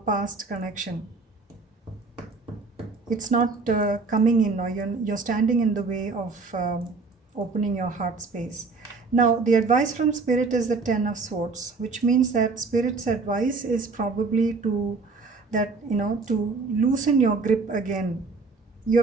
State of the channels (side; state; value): left; quieter; 4.1 dB